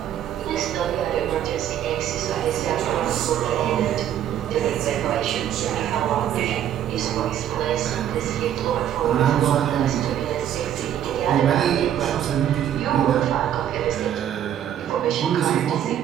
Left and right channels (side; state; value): left; quieter; 10.5 dB